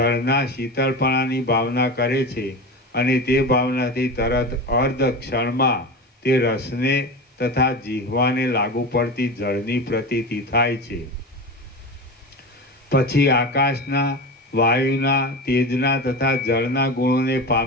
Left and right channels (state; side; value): normal; both; correlation 0.26